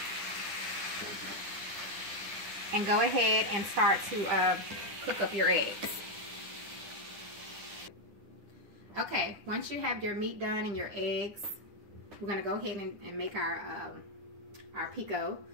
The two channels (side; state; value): left; late; 9.8 ms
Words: And go ahead and start to cook up your eggs. Okay, once you have your meat done and your eggs, we're gonna go ahead and make our pico,